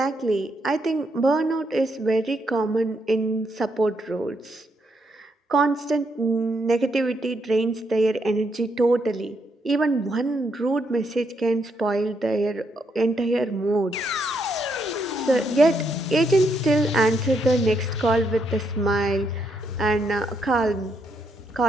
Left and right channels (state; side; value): normal; both; correlation 0.77